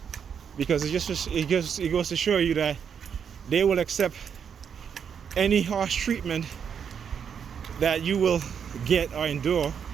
Because it goes to show you that they will accept any harsh treatment that you will get or endure,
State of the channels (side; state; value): left; quieter; 7.4 dB